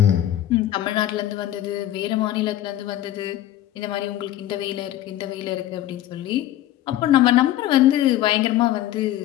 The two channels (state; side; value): quieter; right; 13.1 dB